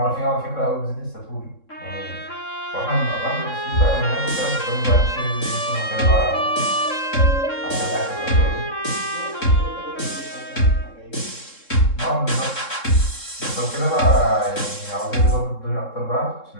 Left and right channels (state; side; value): late; right; 3.7 ms